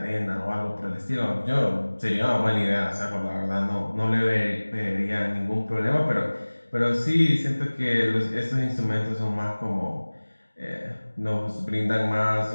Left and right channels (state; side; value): inverted; both; correlation -1.00